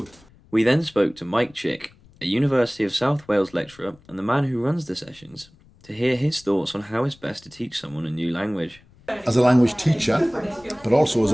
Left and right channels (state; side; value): noise; left; rumble, 27 dB below the sound